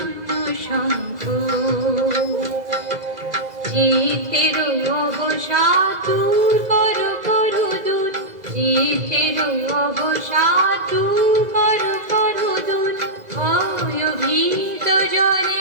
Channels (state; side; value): late; left; 2.0 ms